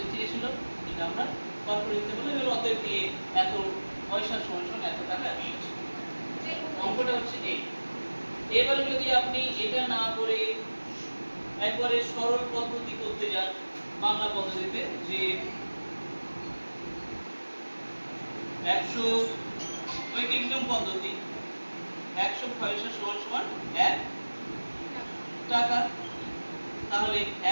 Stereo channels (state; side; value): inverted; both; correlation -1.00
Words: চেয়েছিল, এটা আমরা বার করে দিতে পারলাম। এবার অতএব দিয়ে এত পয়সা সমান এত টাকা আসছে। অঙ্কটা হচ্ছে এই। এবারে যদি আপনি এটা না করে একবারে সরল পদ্ধতি করতে যান, বাংলা পদ্ধতিতে, যে 100 ঐকিক নিয়ম পদ্ধতি, 100 পয়সা সমান 1 টাকা, তাহলে